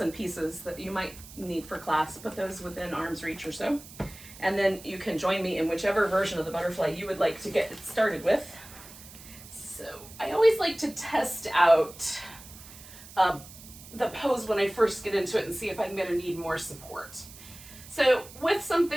pieces that you might need for class, put those within arm's reach or so, and then you can join me in whichever version of the butterfly you would like to get started with. So I always like to test out the pose when I first get into it and see if I'm gonna need more support. So with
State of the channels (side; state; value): right; noise; hiss, 17 dB below the sound